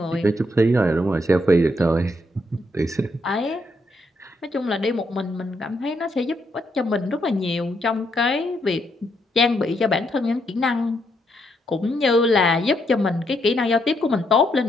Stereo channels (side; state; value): both; normal; correlation 0.76